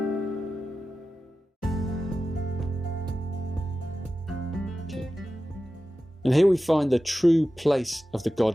And here we find the true place of the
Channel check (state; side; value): normal; both; correlation 0.94